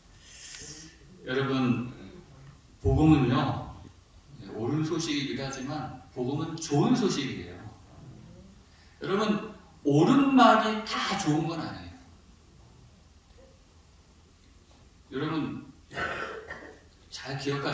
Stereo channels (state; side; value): identical; both; correlation 1.00